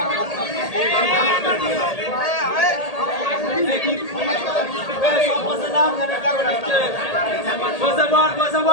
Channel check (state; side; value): late; right; 1.8 ms